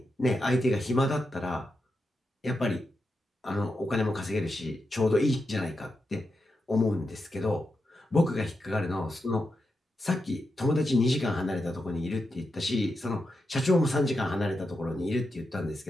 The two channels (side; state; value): both; normal; correlation 0.87